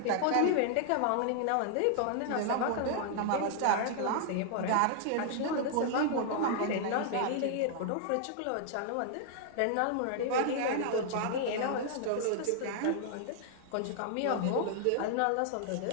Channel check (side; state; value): both; different; correlation -0.01